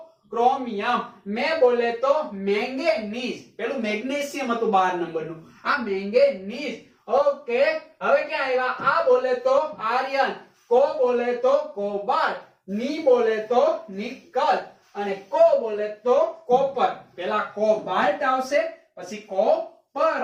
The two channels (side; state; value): both; identical; correlation 1.00